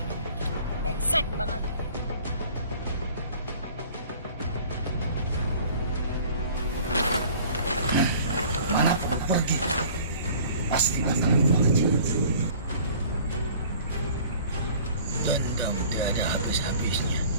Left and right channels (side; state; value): both; inverted; correlation -0.49